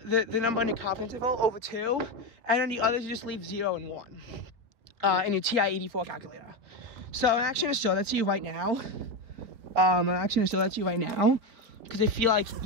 number on your confidence interval over 2, and then the others you just leave 0 and 1 in your TI-84 calculator. So I'm actually going to show that to you right now. Because I feel like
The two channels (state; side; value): late; left; 4.2 ms